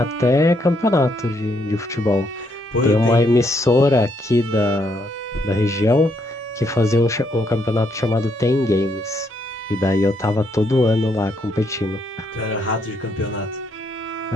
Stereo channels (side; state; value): both; normal; correlation 0.74